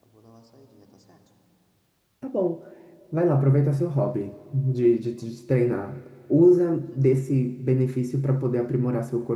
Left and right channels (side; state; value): both; identical; correlation 1.00